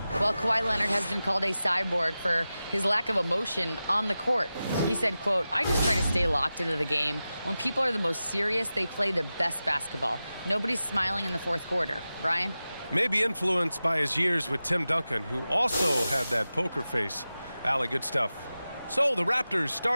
Well, Kawhi Leonard has been called a cyborg for his lack of emotion on the court. He said, quote, "I just try to stay locked into the game. When people are the most serious, they play the best basketball. Nobody's smiling in the fourth quarter." Brian? Maybe influenced by his years with Tim Duncan, who also had that poker face. Allie, good stuff. So the Raptors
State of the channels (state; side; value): inverted; both; correlation -0.94